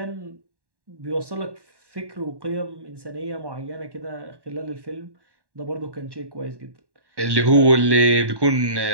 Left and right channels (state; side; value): late; left; 1.1 ms